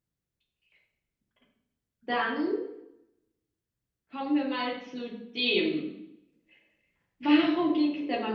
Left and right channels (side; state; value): both; identical; correlation 1.00